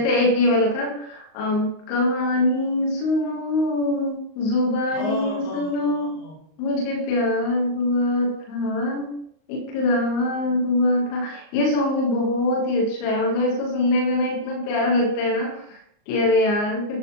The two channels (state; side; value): late; right; 38 ms